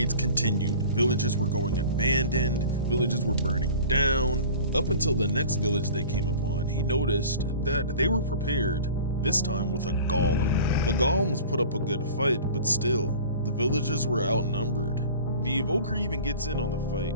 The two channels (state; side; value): inverted; both; correlation -0.42